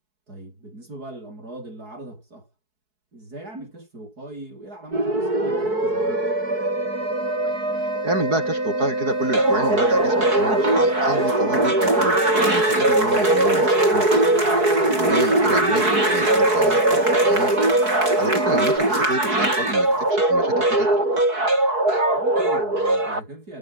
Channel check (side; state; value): left; late; 4.7 ms